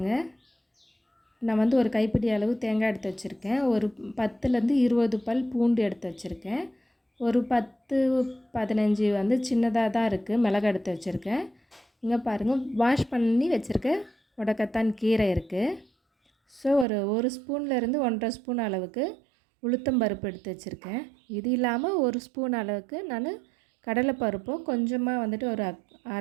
நான் வந்து ஒரு கைப்பிடி அளவு தேங்காய் எடுத்து வச்சுருக்கேன். ஒரு 10லேருந்து 20 பல் பூண்டு எடுத்து வச்சுருக்கேன். ஒரு 10, 15 வந்து சின்னதாக தான் இருக்குது மிளகாய் எடுத்து வச்சுருக்கேன். இங்கே பாருங்கள், வாஷ் பண்ணி வச்சுருக்க முடக்கத்தான் கீரை இருக்குது. ஸோ ஒரு ஸ்பூன்லேருந்து 1½ ஸ்பூன் அளவுக்கு உளுத்தம்பருப்பு எடுத்து வச்சுருக்கேன். இது இல்லாமல் 1 ஸ்பூன் அளவுக்கு நான் கடலைப்பருப்பும் கொஞ்சமாக வந்துட்டு ஒரு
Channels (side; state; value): left; drops out; at 16.9 s